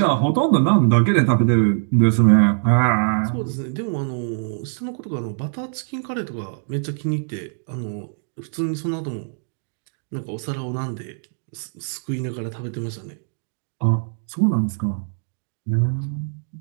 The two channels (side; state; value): left; silent; digital silence